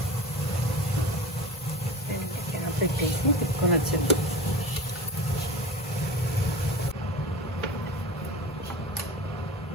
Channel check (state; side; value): normal; both; correlation 0.32